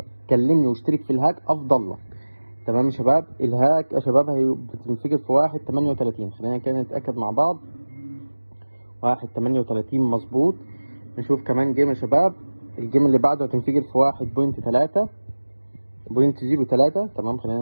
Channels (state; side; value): inverted; both; correlation -1.00